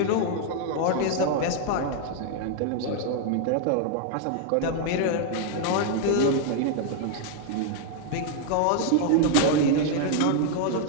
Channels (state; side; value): different; both; correlation 0.00